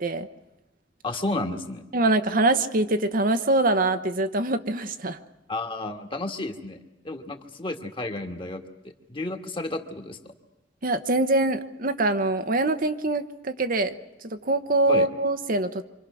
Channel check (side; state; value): both; normal; correlation 0.00